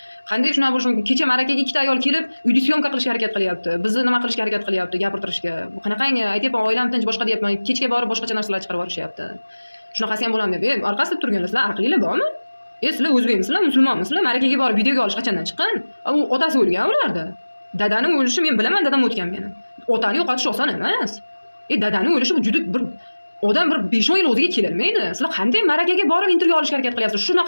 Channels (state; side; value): inverted; both; correlation -1.00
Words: Qanday shunaqa bo'lishi mumkin? Kecha marakaga ikkita ayol kelib uyda syomka qilishga harakat qilyapti, bizni nima qilishga harakat qilyapti, gapirtirishga. Bu qanaqangi? Aytyapman, oilam tinch, boshqa deyapman, kechga borib boshqacha narsalar chiqarib yuborishyapti. Shunaqasi ham bo'ladimi deb. Orqasida turganlar, sizlar aqlinglar bormi? Sizlar o'zbekmisizlar, musulmonmisizlar? Marakaga borib videoga olish qachondan chiqqan? U otasi o'lgan ularda. Dadani o'lishi men bilaman, dadam o'tgan meni. Otani yo'qotish oson emas. Dadani o'lishi bu juda bir odam bir 5-10 yil o'ziga kelolmaydi. Sizlar qanday marakaga borib intervyu olishga harakat qilyapsiz?